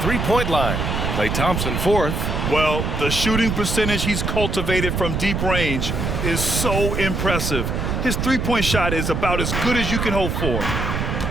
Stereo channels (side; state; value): right; noise; rumble, 1 dB below the sound